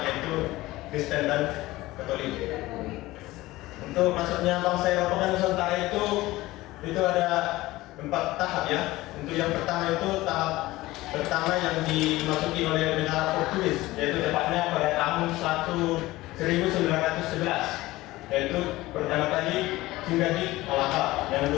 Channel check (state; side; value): quieter; right; 18.4 dB